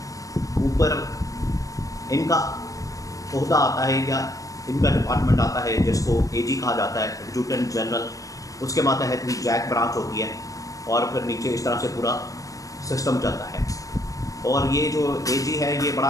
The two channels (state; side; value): late; right; 0.16 ms